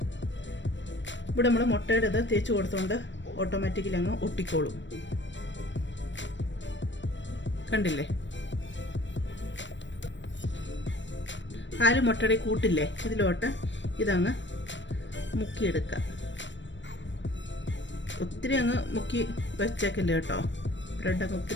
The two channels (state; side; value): late; right; 0.53 ms